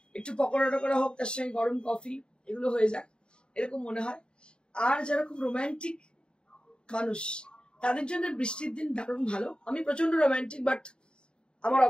একটু পকোড়া টকোড়া হোক, তার সঙ্গে গরম কফি, এগুলো হয়ে যায়, এরকম মনে হয়। আর যারা খুব রোম্যান্টিক মানুষ, তাদের জন্য বৃষ্টির দিন দারুণ ভালো। আমি প্রচন্ড রোম্যান্টিক, বাট আমার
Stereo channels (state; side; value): late; right; 0.051 ms